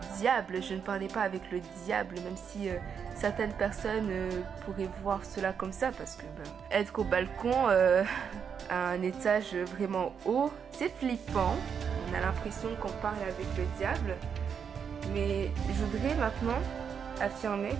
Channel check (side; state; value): left; quieter; 7.1 dB